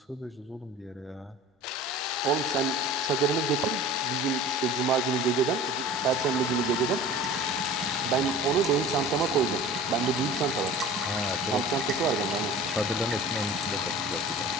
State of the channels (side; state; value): both; normal; correlation 0.40